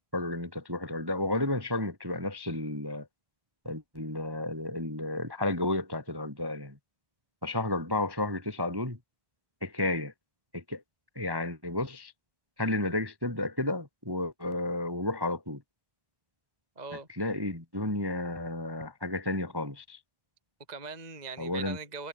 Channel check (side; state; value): left; late; 1.1 ms